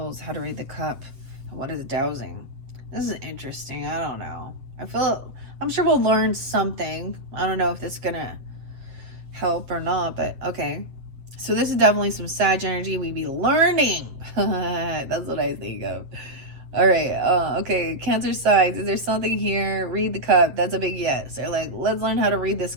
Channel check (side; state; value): left; late; 7.6 ms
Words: how to read the cup, and what is dowsing. This is interesting. I don't know. I'm sure we'll learn something. I don't know if this is going to help or not, but okay. So this is definitely some Sag energy. We be learning. That's what I think of. All right. Okay. Cancer signs. Is there something here? Read the cup. That's a big yes. They're like, let's learn how to read this